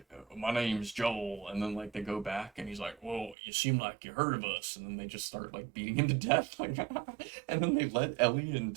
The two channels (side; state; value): left; drops out; at 3.4 s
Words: my name's Joel, and then like they go back, and he's like, "Well, you seem like you heard of us," and then they just start like beating him to death, like, and then they let Ellie and